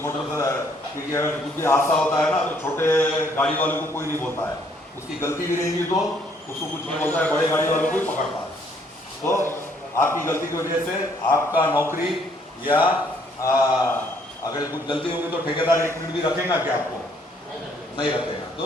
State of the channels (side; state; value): both; normal; correlation 0.66